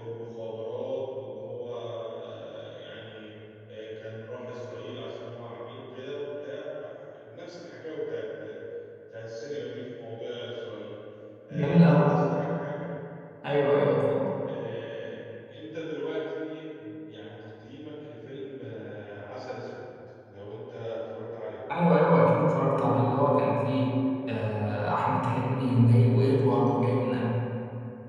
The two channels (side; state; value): both; identical; correlation 1.00